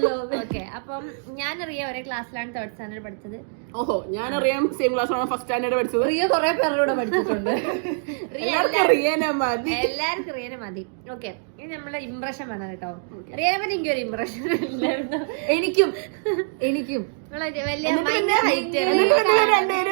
ഓക്കെ, അപ്പം ഞാനറിയാം ഒരേ ക്ലാസ്സിലാണ് 3rd സ്റ്റാൻഡേർഡ് പഠിച്ചത്. ഓഹോ, ഞാനറിയാം സെയിം ക്ലാസ്സിലാണ് 1st സ്റ്റാൻഡേർഡ് പഠിച്ചത്. റിയ കുറെ പേരുടെ പഠിച്ചിട്ടുണ്ട്. എല്ലാവർക്കും റിയനെ മതി. ഓക്കെ, ഇനി നമ്മളെ ഇംപ്രഷൻ വേണം കേട്ടോ. റിയനെ പറ്റി എനിക്കൊരു ഇംപ്രഷൻ ഇല്ലായിരുന്നു. എനിക്കും വലിയ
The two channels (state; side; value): silent; left; digital silence